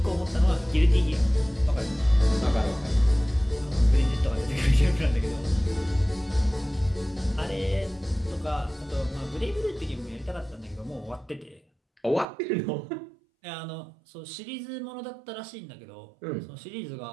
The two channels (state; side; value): drops out; left; at 12.2 s